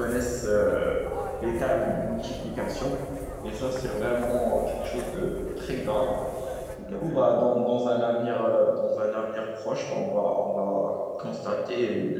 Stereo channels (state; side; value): identical; both; correlation 1.00